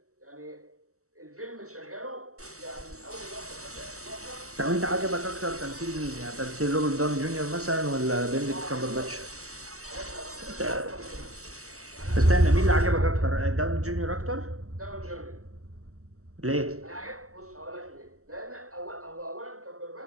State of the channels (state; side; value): late; left; 0.64 ms